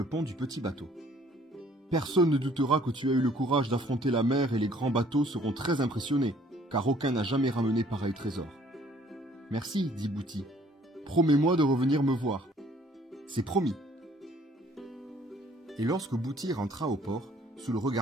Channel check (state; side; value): normal; both; correlation 0.59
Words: pont du petit bateau. « Personne ne doutera que tu as eu le courage d'affronter la mer et les grands bateaux seront très impressionnés, car aucun n'a jamais ramené pareil trésor. »« Merci, dit Bouti. Promets-moi de revenir me voir. »« C'est promis. » Et lorsque Bouti rentra au port, sous le